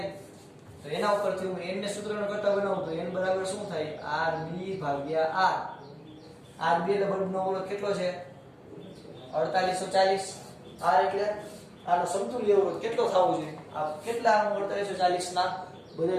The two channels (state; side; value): identical; both; correlation 1.00